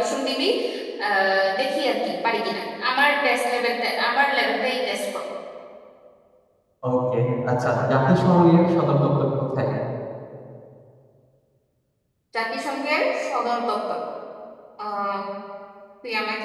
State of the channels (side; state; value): both; identical; correlation 1.00